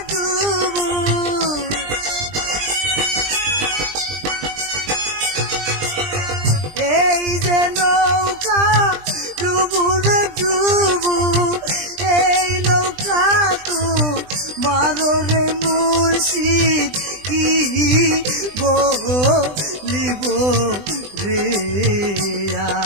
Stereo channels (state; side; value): late; left; 20 ms